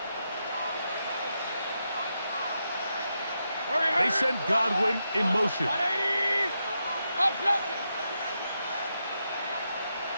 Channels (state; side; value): inverted; both; correlation -0.84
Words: They send Godwin in motion. 180!